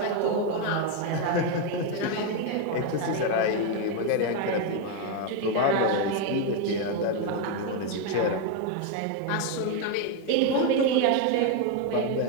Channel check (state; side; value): different; both; correlation 0.02